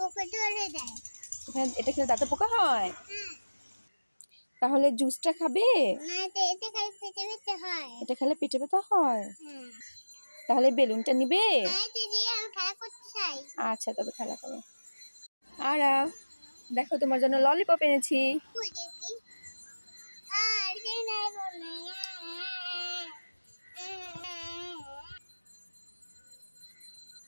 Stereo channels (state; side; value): inverted; both; correlation -1.00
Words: ধরে দেয়। এটা খেলে দাঁতে পোকা হয়? হ্যাঁ। তাহলে জুসটা খাবে? না তো এতে খালি পেটে ব্যথা হয়। এটা খেলে পেটে ব্যথা হয়? হ্যাঁ। তাহলে বেলুনটা নিবে? না তো দিয়ে আমি খেলা করতে চাই। আচ্ছা তবে খেলা করো। আর দেখো তোমার জন্য ললিপপ এনেছি। কই দেখি। আর যে নাই বলে।